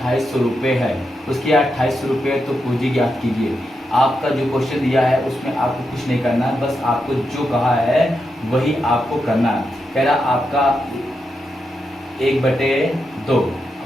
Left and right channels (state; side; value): normal; both; correlation 0.85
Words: रुपये है, उसकी आय 2800 रुपये, तो पूंजी ज्ञात कीजिए। आपका जो क्वेश्चन दिया है उसमें आपको कुछ नहीं करना है, बस आपको जो कहा है वही आपको करना है। कह रहा आपका 1/2